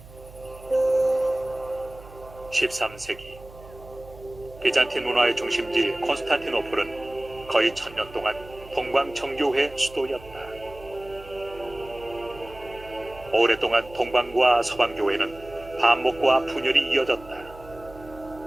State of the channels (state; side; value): noise; right; hum, 19 dB below the sound